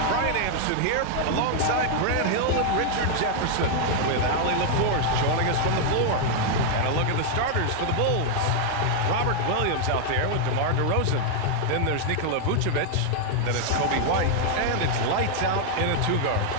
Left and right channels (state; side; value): different; both; correlation 0.00